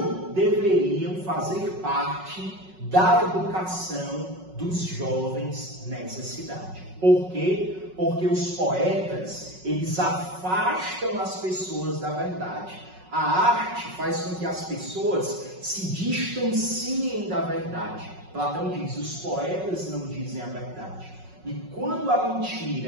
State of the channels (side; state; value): left; late; 5.4 ms